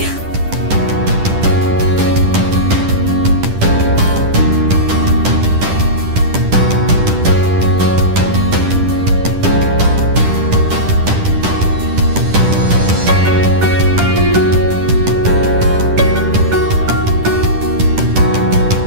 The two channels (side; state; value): left; late; 10 ms